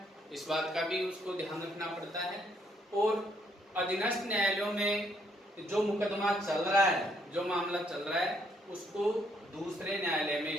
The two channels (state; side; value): normal; both; correlation 0.71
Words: इस बात का भी उसको ध्यान रखना पड़ता है। और अधीनस्थ न्यायालयों में जो मुकदमा चल रहा है, जो मामला चल रहा है, उसको दूसरे न्यायालय में